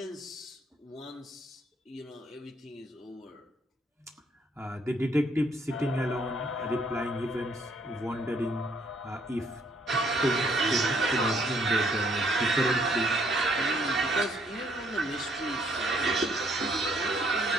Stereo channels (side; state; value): both; normal; correlation 0.67